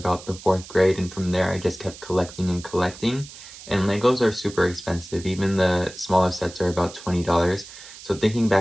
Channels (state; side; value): noise; right; hiss, 16 dB below the sound